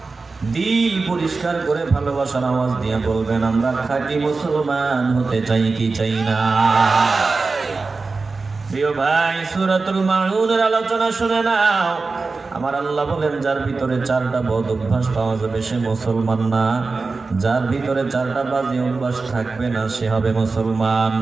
দিল পরিষ্কার করে ভালোবাসার আওয়াজ দিয়ে বলবেন, আমরা খাঁটি মুসলমান হতে চাই কি চাই না? প্রিয় ভাই, সূরাতুল মাউনের আলোচনা শুনে নাও। আমার আল্লাহ বলেন, যার ভিতরে 4টা বদ অভ্যাস পাওয়া যাবে সে মুসলমান না, যার ভিতরে 4টা বাজে অভ্যাস থাকবে না সে হবে মুসলমান।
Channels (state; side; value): quieter; left; 4.0 dB